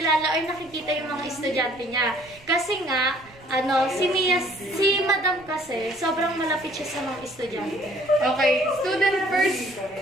or nakikita yung mga estudyante niya. Kasi nga, si madam kasi, sobrang malapit siya sa mga estudyante. Okay, student first.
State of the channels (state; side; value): noise; right; rumble, 25 dB below the sound